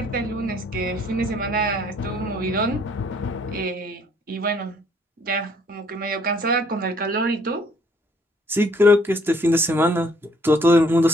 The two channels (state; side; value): normal; both; correlation 0.62